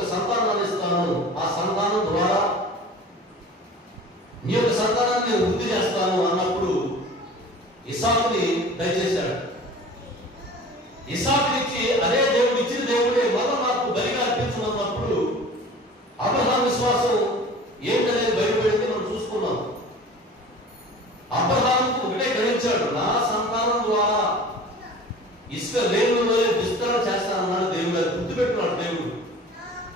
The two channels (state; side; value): normal; both; correlation 0.41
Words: సంతానాన్ని ఇస్తాను, ఆ సంతానం ద్వారా నీ యొక్క సంతానాన్ని నేను వృద్ధి చేస్తాను అన్నప్పుడు ఇస్సాకుని దయచేశాడు. ఇస్సాకునిచ్చి అదే దేవుడు ఇచ్చిన దేవుడే మళ్ళా నాకు బలిగా అర్పించమన్నప్పుడు అబ్రహాం విశ్వాసం ఏంటనేది బయటపడింది మనం చూసుకున్నాం. ఇచ్చాడు. నా సంతానం ద్వారా ఇసుక రేణువులో విస్తరణ చేస్తానన్నాడు దేవుడు. అది గుర్తుపెట్టుకున్నాడు దేవుడు.